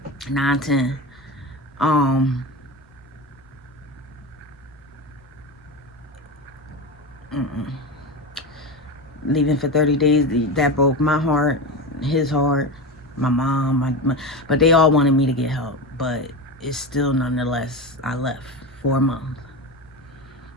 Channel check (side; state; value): both; normal; correlation 0.22